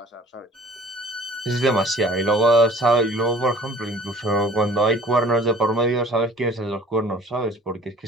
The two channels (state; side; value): normal; both; correlation 0.50